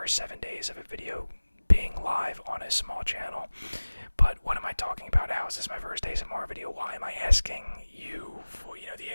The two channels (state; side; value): inverted; both; correlation -1.00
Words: 7 days of a video being live on a small channel. But what am I talking about? How is this my first ASMR video? Why am I asking you, for the